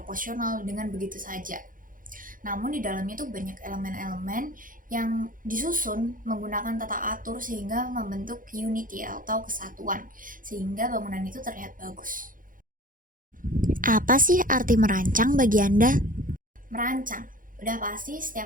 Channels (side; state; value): left; late; 0.40 ms